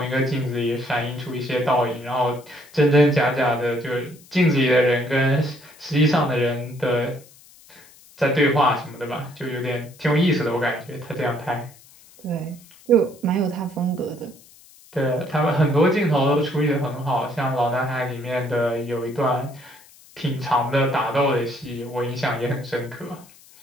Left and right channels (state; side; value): noise; left; hiss, 25 dB below the sound